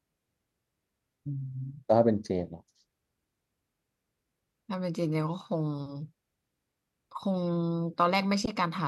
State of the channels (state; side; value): identical; both; correlation 1.00